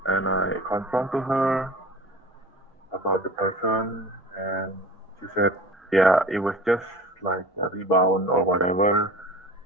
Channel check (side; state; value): both; normal; correlation 0.39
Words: and I confronted her about the person, and she said, yeah, it was just like a rebound or whatever.